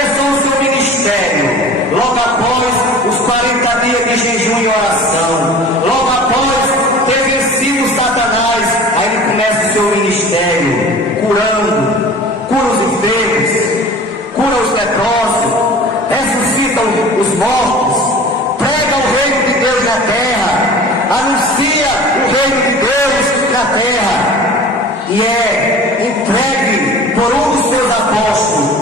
o seu ministério logo após os 40 dias de jejum e oração. Logo após ter vencido Satanás, aí ele começa o seu ministério curando, cura os enfermos, cura os leprosos, ressuscita os mortos, prega o reino de Deus na terra, anuncia o reino de Deus na terra, e é entregue por um dos seus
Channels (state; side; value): normal; both; correlation 0.41